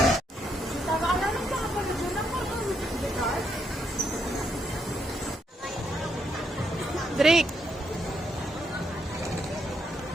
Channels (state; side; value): normal; both; correlation 0.77